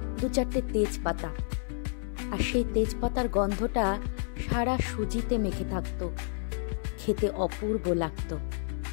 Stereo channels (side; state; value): right; silent; 58 dB below the other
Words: 2-4টে তেজপাতা, আর সেই তেজপাতার গন্ধটা সারা সুজিতে মেখে থাকতো, খেতে অপূর্ব লাগতো।